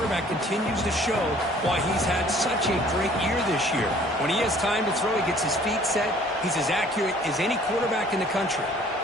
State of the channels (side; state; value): both; normal; correlation 0.55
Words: continues to show why he's had such a great year this year. When he has time to throw, he gets his feet set. He's as accurate as any quarterback in the country.